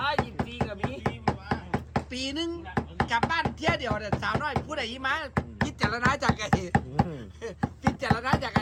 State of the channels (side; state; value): both; identical; correlation 1.00